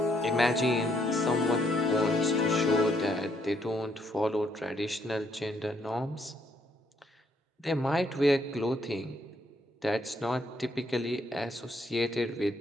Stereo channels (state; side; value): normal; both; correlation 0.71